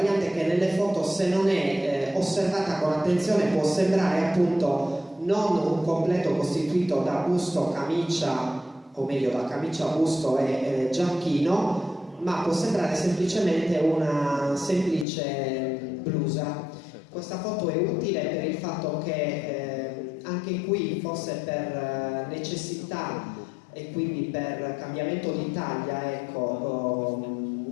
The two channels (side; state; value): right; drops out; at 15.1 s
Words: che nelle foto, se non è osservata con attenzione, può sembrare appunto non un completo costituito da busto, camicia, o meglio da camicia, busto e giacchino, ma può sembrare semplicemente una semplice blusa. Questa foto è utile per il fatto che anche qui, forse per necessità e quindi per cambiamento di taglia, ecco,